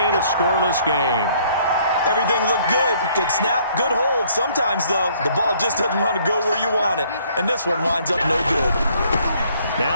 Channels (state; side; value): inverted; both; correlation -0.63